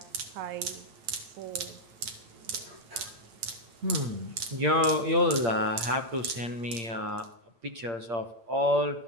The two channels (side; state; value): left; late; 9.1 ms